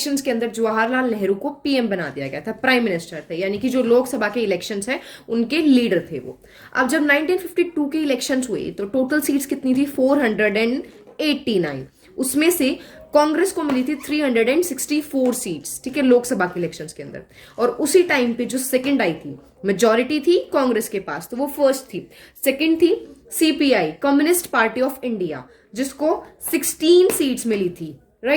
के अंदर जवाहरलाल नेहरू को पीएम बना दिया गया था, प्राइम मिनिस्टर थे, यानी कि जो लोकसभा के इलेक्शंस हैं उनके लीडर थे वो। अब जब 1952 के इलेक्शंस हुए तो टोटल सीट्स कितनी थी, 489। उसमें से कांग्रेस को मिली थी 364 सीट्स, ठीक है, लोकसभा के इलेक्शंस के अंदर। और उसी टाइम पे जो सेकंड आई थी, मेजॉरिटी थी कांग्रेस के पास, तो वो फर्स्ट थी। सेकंड थी CPI, communist party of India, जिसको 16 सीट्स मिली थी,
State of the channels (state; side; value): identical; both; correlation 1.00